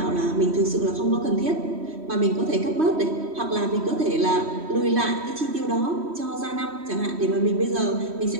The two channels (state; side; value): late; left; 3.1 ms